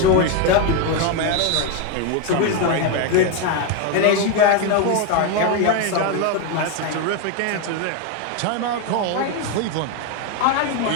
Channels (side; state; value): both; different; correlation 0.01